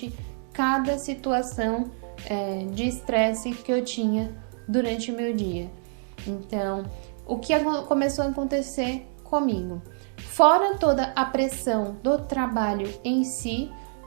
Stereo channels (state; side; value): silent; left; digital silence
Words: cada situação de estresse que eu tinha durante o meu dia. Então, o que começou a acontecer comigo? Fora toda a pressão do trabalho em si,